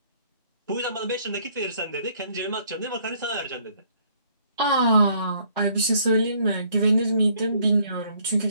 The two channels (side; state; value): both; inverted; correlation -0.64